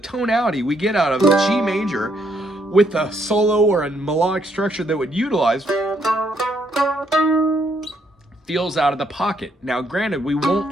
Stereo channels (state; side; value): normal; both; correlation 0.73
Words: we get out of G major with a solo or a melodic structure that would utilize feels out of the pocket. Now, granted, we won't